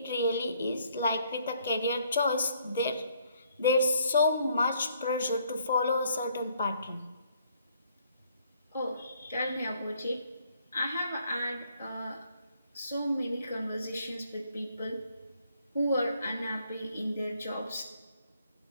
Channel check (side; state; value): both; inverted; correlation -0.66